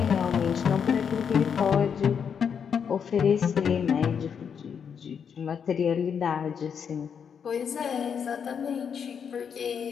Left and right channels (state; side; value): quieter; right; 7.2 dB